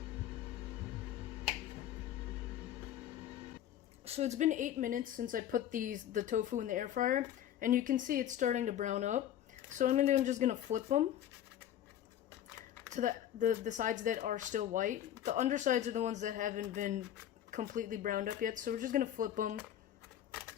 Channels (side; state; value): right; quieter; 11.1 dB